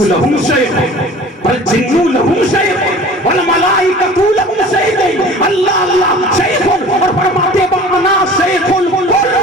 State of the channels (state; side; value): normal; both; correlation 0.43